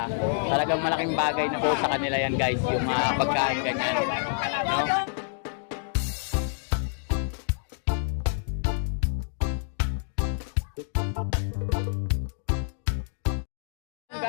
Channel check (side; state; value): right; silent; 60 dB below the other